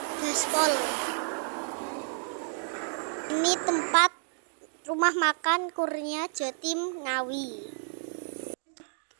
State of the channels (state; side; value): silent; left; digital silence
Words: Ini tempat rumah makan Kurnia Jatim Ngawi.